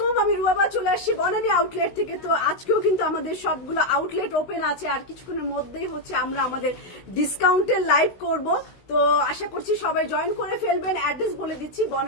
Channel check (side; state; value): right; late; 16 ms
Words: আমি রুবাবা চলে আসছি বনানী আউটলেট থেকে। তো আজকেও কিন্তু আমাদের সবগুলো আউটলেট ওপেন আছে, আর কিছুক্ষণের মধ্যেই হচ্ছে আমরা আমাদের ডিসকাউন্টের লাইভ করব। তো আশা করছি সবাই জয়েন করে ফেলবেন। অ্যাড্রেস বলে দিচ্ছি,